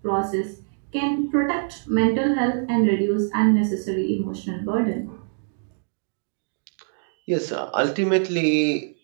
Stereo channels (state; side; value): silent; left; digital silence